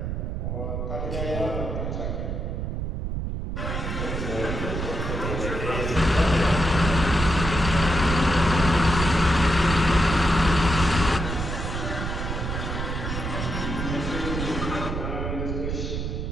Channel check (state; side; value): noise; right; rumble, 3 dB below the sound